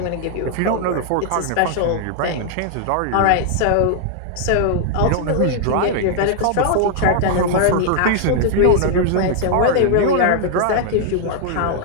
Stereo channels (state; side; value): different; both; correlation -0.01